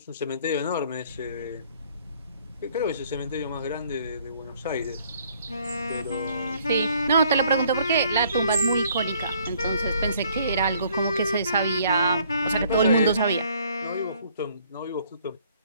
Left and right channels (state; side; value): inverted; both; correlation -0.62